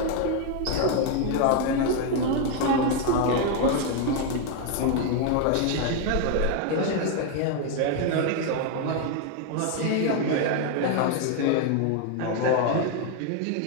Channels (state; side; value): different; both; correlation 0.01